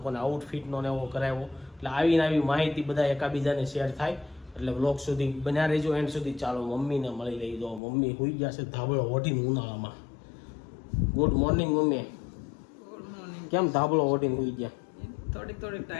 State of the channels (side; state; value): right; drops out; at 7.8 s